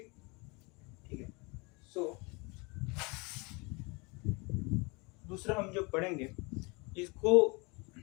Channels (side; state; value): right; quieter; 28.4 dB